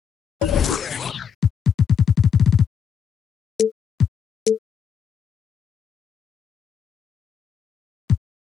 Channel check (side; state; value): right; quieter; 7.4 dB